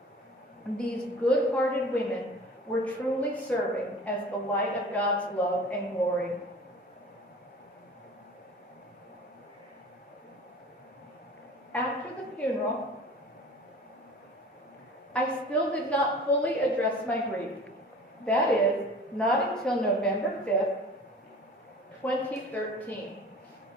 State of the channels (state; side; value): normal; both; correlation 0.42